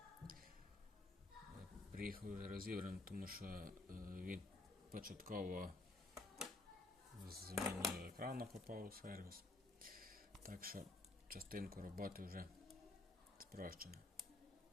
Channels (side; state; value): right; quieter; 3.0 dB